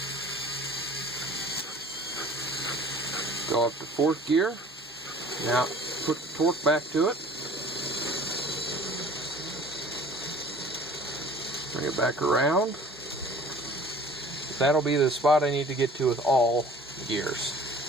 Go up to fourth gear. Now put the torque back to it. Bring it back around. That'll be the spot I need to get to with all gears.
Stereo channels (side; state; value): both; normal; correlation 0.47